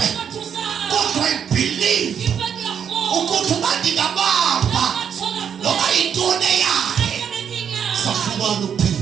kodwa ibelieve ukuthi bandingabamba loba intone yakhe safumana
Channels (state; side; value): quieter; left; 8.0 dB